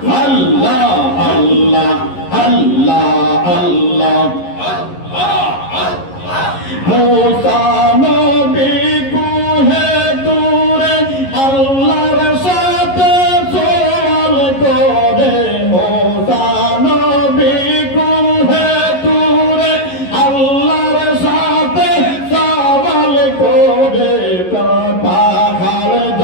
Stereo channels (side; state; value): right; late; 11 ms